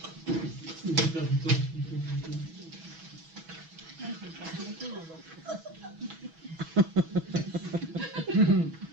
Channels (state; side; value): late; left; 6.1 ms